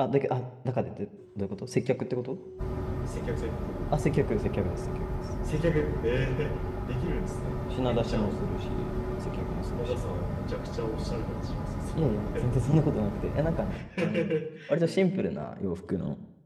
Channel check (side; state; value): both; identical; correlation 1.00